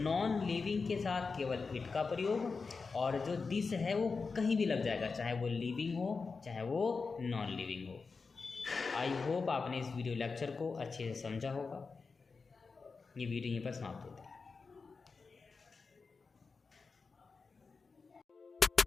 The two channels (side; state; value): right; quieter; 4.6 dB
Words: लिविंग के साथ केवल इट का प्रयोग, और जो दिस है वो कहीं भी लग जाएगा, चाहे वो लिविंग हो चाहे वो नॉन लिविंग हो। आई होप आपने इस वीडियो लेक्चर को अच्छे से समझा होगा। ये वीडियो यहीं पर समाप्त होती है।